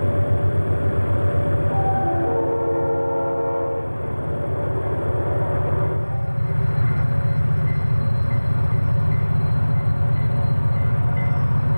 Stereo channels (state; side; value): inverted; both; correlation -1.00